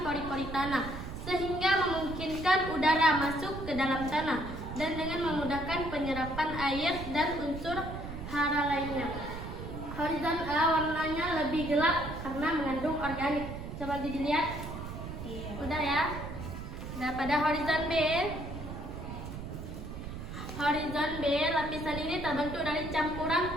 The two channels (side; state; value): right; noise; rumble, 8 dB below the sound